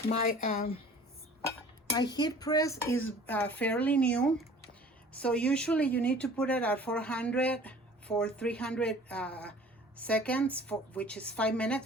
My heat press is fairly new, So usually you need to put it at 400 for 300 seconds, which is 5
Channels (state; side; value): normal; both; correlation 0.48